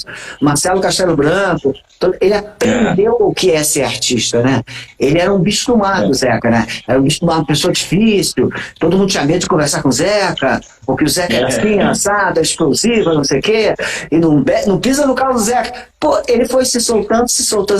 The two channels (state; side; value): identical; both; correlation 1.00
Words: Marcelo Castelo Branco, ele aprendeu o que é ser artista, né? Ele era um bicho do mato, Zeca, né? Era um bicho do mato, uma pessoa difícil, todo mundo tinha medo de conversar com o Zeca, porque o Zeca era assim, assado, explosivo, não sei o quê, e não pisa no carro do Zeca. Pô, ele foi se soltando,